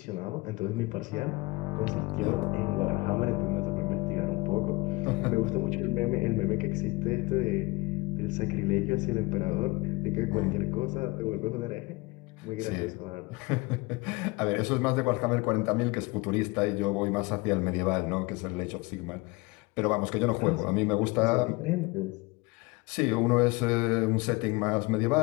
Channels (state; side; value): quieter; right; 24.2 dB